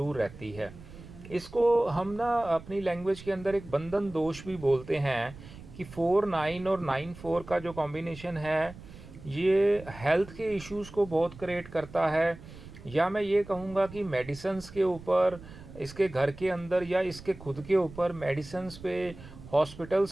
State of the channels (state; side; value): noise; right; rumble, 17 dB below the sound